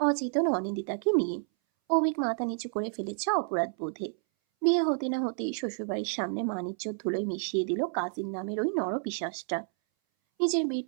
অনিন্দিতাকে নিয়ে। অভিক মাথা নিচু করে ফেলেছে অপরাধ বোধে। বিয়ে হতে না হতেই শ্বশুরবাড়ির সামনে মানিজ্যর ধুলোয় মিশিয়ে দিল কাজীর নামের ওই নরপিশাচটা। নিজের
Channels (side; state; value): left; silent; 58 dB below the other